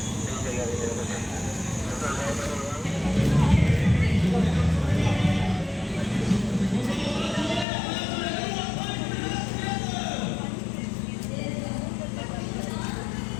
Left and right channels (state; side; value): drops out; right; at 7.7 s